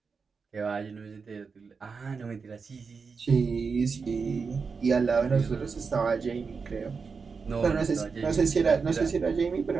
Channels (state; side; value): quieter; left; 5.1 dB